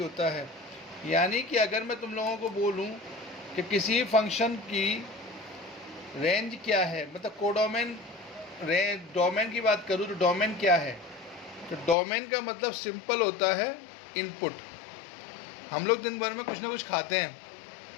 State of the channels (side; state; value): right; drops out; at 12.0 s